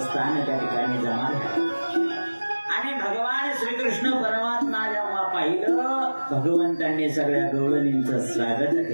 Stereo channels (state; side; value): inverted; both; correlation -1.00